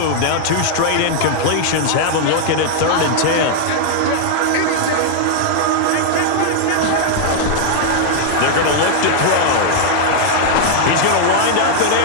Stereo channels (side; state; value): both; different; correlation -0.01